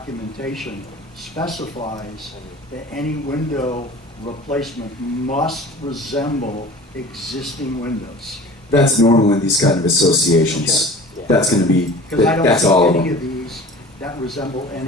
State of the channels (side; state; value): both; normal; correlation 0.41